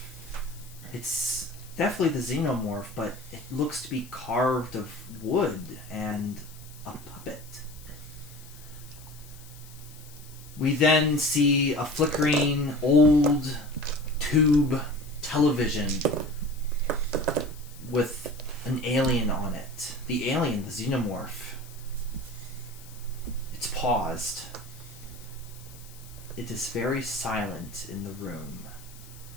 It's definitely the xenomorph, but it looks to be carved of wood and a puppet. We then see a flickering old tube television with an alien on it. The alien, the xenomorph. It's paused. It is very silent in the room.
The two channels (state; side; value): noise; left; hiss, 20 dB below the sound